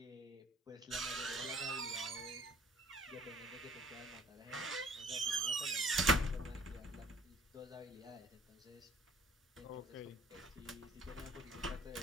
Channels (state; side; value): normal; both; correlation 0.54